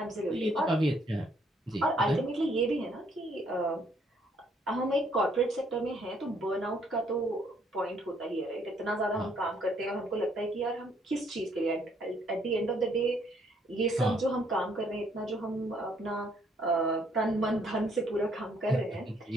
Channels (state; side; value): normal; both; correlation 0.67